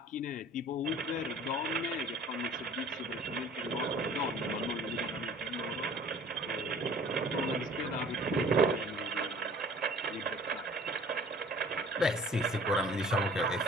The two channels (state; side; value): normal; both; correlation 0.50